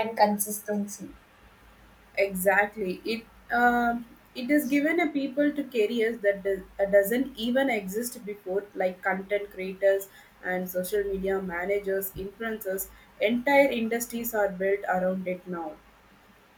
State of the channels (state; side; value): identical; both; correlation 1.00